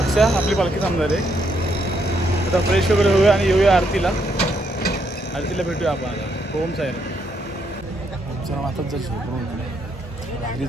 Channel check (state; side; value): normal; both; correlation 0.75